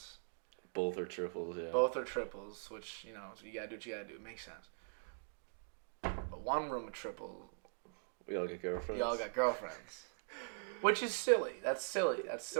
Both are triples, yeah. Both are triples, which so you gotta do what you gotta do. It makes sense. But 1 room of triple. We all got girlfriends. You all got girlfriends, which is silly. That's silly. That's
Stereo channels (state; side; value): silent; left; digital silence